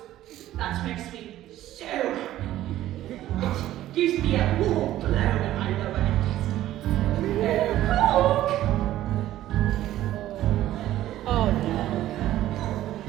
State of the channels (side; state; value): left; quieter; 13.8 dB